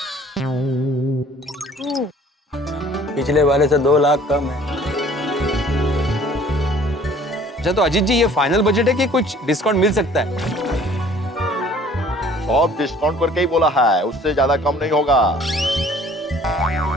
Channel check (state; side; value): normal; both; correlation 0.53